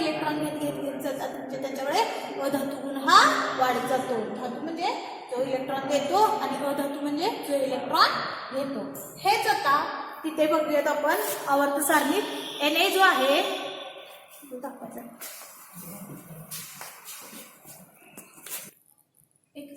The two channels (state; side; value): identical; both; correlation 1.00